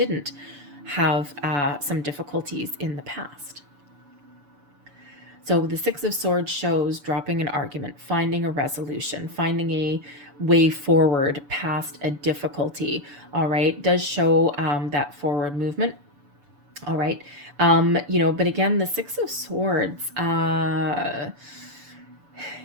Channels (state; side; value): late; left; 6.9 ms